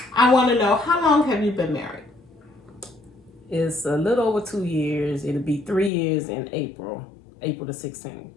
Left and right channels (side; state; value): right; drops out; at 5.9 s